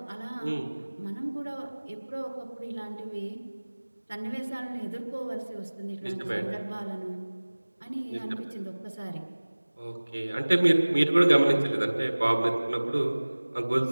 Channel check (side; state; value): both; inverted; correlation -1.00